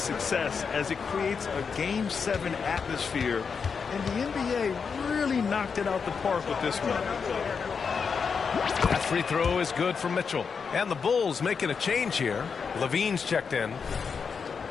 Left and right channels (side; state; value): right; quieter; 5.8 dB